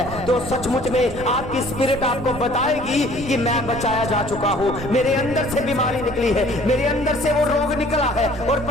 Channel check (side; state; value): right; noise; rumble, 14 dB below the sound